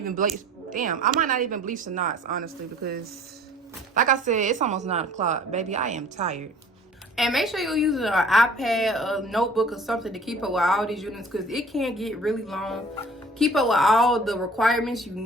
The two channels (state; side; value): normal; both; correlation 0.49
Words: bleach. Damn, I might not even bleach the knots, honestly, because like I said, it's almost 9 o'clock. Baby, I am tired. And make sure you're using an iPad, a notebook, or something to keep up with all these units because it can get really long. Keep up with all the requirements you